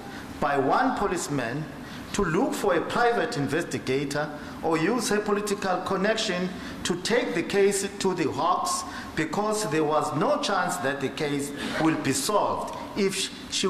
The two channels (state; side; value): identical; both; correlation 1.00